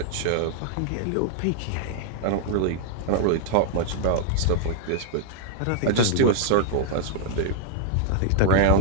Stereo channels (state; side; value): different; both; correlation 0.00